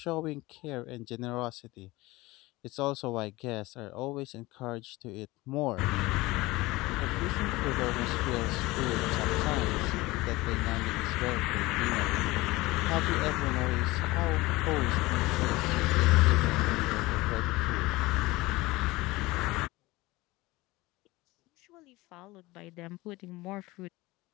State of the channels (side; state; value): right; quieter; 20.5 dB